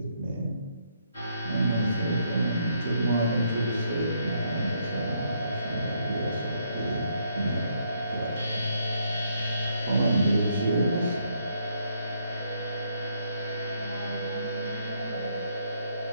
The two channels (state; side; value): inverted; both; correlation -0.73